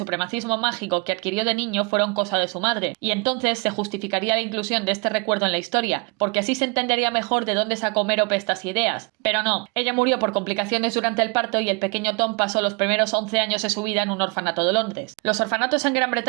mágico que adquirió de niño fueron cosa de su madre, y entonces se justificaría la inclusión de este recuerdo en la historia, porque así se entendería mejor de dónde sacó Mérope estas ideas. Pero no, ella murió por complicaciones durante el parto y el pequeño Tom pasó los primeros 11 años su vida en un orfanato de Londres. Los orfanatos en Gran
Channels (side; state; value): left; quieter; 30.9 dB